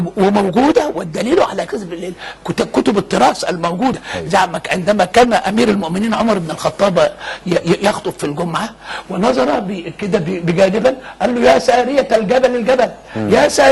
وموجوده، والدليل على كذب كتب التراث الموجوده. عندما كان امير المؤمنين عمر بن الخطاب يخطب في الجمعه ونظر كده بجانبا قال له يا ساريه الجبل الجبل، يا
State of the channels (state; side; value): identical; both; correlation 1.00